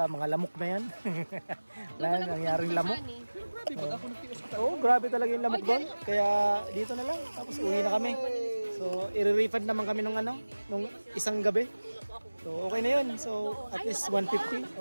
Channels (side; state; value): both; inverted; correlation -1.00